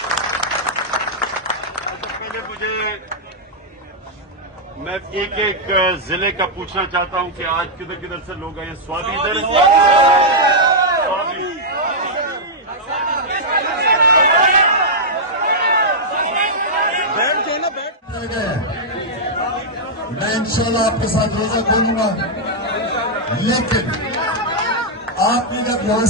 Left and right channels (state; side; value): normal; both; correlation -0.07